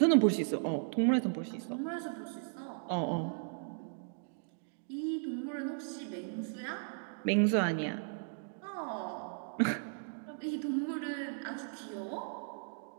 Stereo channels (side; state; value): left; silent; digital silence